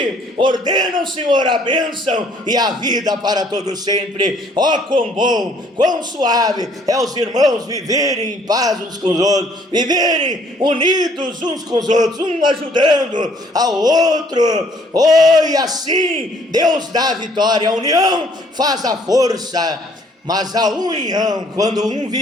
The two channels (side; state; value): both; normal; correlation 0.62